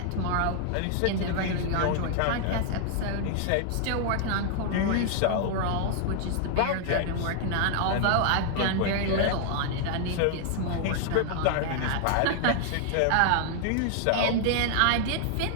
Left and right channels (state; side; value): different; both; correlation 0.00